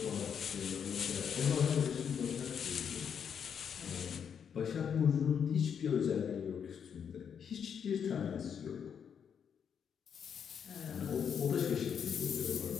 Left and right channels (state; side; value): quieter; right; 7.6 dB